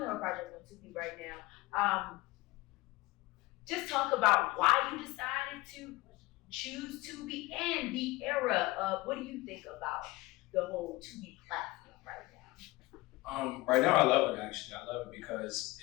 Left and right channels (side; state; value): right; quieter; 20.6 dB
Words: have a project on Tubi right now. Just talk about why you decided to choose Tubi and the era of what do you think about the whole Tubi platform right now? Right now I love it actually. I love it because